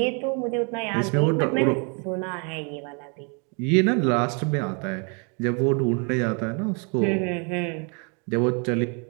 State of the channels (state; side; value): quieter; left; 36.1 dB